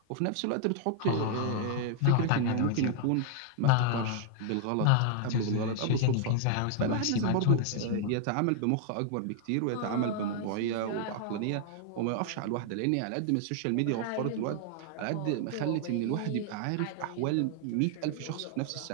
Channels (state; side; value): different; both; correlation 0.00